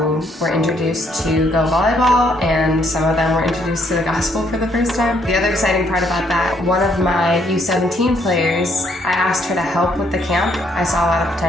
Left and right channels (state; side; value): normal; both; correlation 0.70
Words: were introduced to GO Voleibol, and some of them were introduced to the gospel for the first time. The other exciting part about that, one of my U17 players, I asked her to help with the camp. I saw a lot of